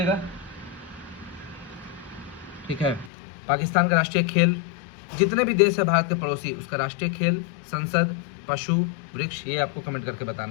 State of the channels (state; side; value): drops out; right; at 3.1 s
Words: ठीक है, पाकिस्तान का राष्ट्रीय खेल, जितने भी देश है भारत के पड़ोसी, उसका राष्ट्रीय खेल, संसद, पशु, वृक्ष, ये आपको कमेंट करके